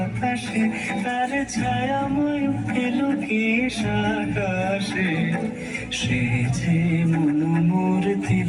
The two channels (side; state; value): both; identical; correlation 1.00